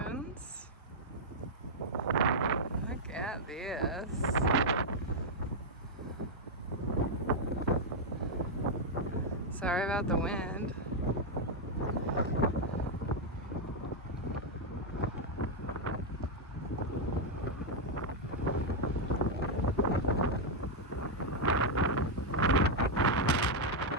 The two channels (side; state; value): both; normal; correlation -0.02